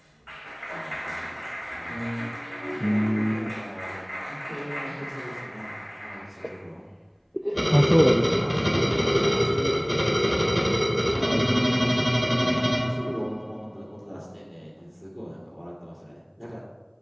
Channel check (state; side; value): identical; both; correlation 1.00